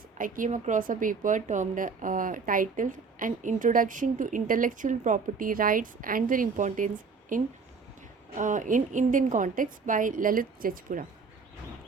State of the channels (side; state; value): left; quieter; 5.0 dB